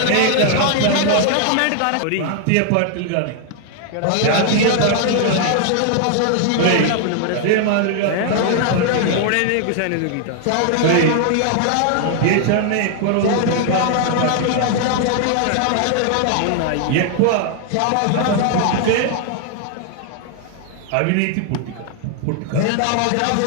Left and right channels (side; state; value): both; different; correlation 0.00